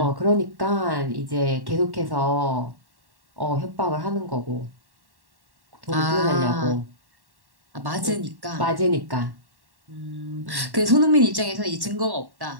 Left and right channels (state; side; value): late; left; 1.1 ms